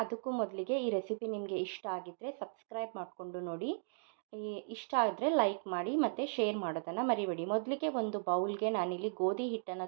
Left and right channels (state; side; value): silent; left; digital silence